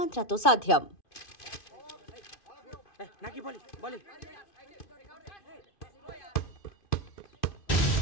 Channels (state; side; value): late; right; 2.5 ms